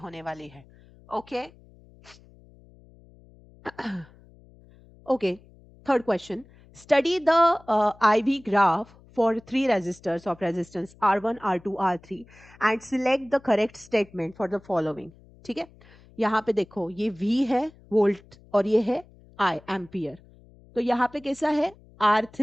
वाली है. Okay. Okay, third question. Study the IV graph for three resistors of resistance R1, R2, R3 and select the correct statement for the following. ठीक है. यहाँ पे देखो ये V है वोल्ट और ये है I एम्पियर. तो यहाँ पे कैसा है?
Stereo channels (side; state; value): left; noise; hum, 25 dB below the sound